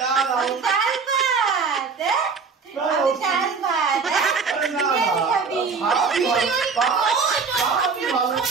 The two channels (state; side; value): quieter; left; 5.2 dB